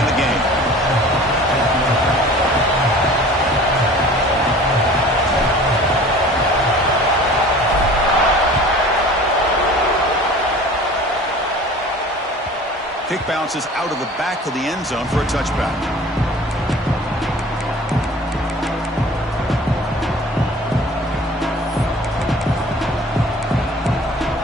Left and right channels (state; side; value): normal; both; correlation 0.44